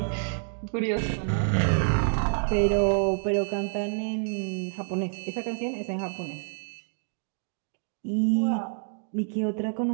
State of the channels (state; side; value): silent; left; 59 dB below the other